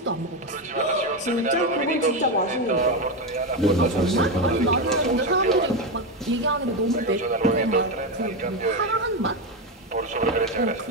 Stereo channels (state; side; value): normal; both; correlation 0.11